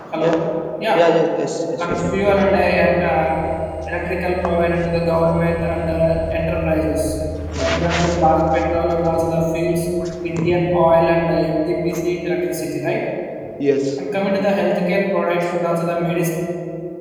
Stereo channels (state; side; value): identical; both; correlation 1.00